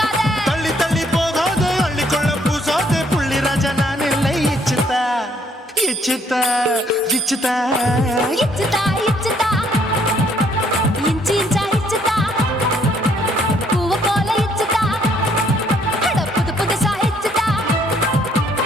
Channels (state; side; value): normal; both; correlation 0.66